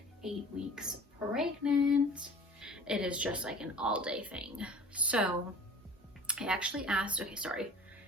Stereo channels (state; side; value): normal; both; correlation 0.45